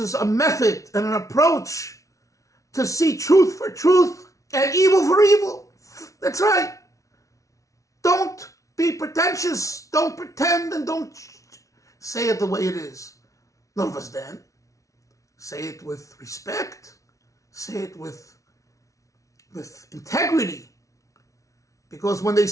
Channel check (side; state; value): right; late; 0.16 ms